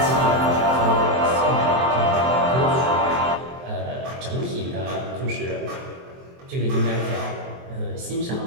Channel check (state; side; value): late; left; 23 ms